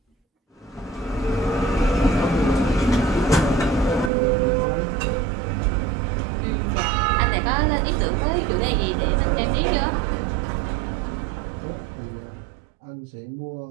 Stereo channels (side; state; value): left; drops out; at 4.1 s